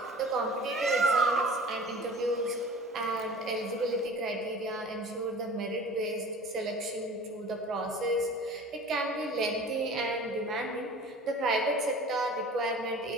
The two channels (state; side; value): normal; both; correlation 0.42